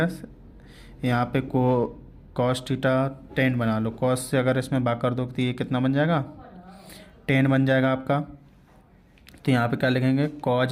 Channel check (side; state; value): both; identical; correlation 1.00